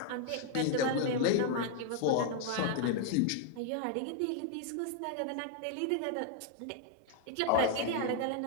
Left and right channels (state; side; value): different; both; correlation 0.00